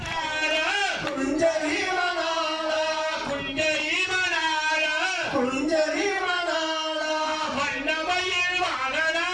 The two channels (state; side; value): identical; both; correlation 1.00